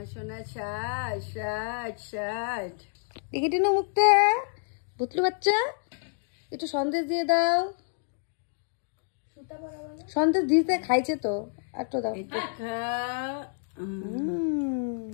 সোনা ষাট। দেখি টিনু মুখটা, বুতলু বাচ্চা একটু সন্দেশ দিয়ে দাও। সন্দেশ দিতে খাইছে তো, একটু দাও।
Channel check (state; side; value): silent; right; digital silence